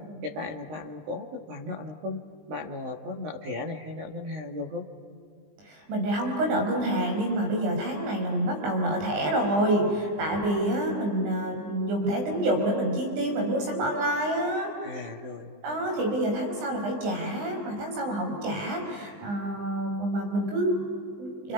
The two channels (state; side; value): late; left; 20 ms